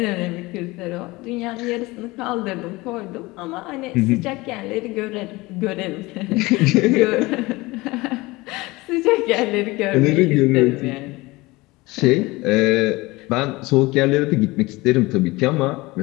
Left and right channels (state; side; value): quieter; right; 21.7 dB